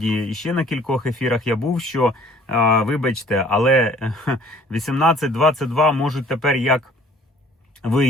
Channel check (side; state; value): both; normal; correlation 0.55